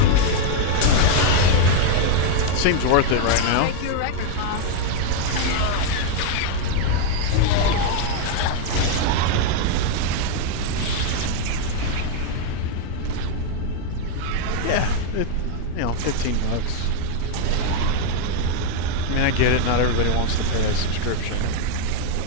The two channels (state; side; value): different; both; correlation 0.00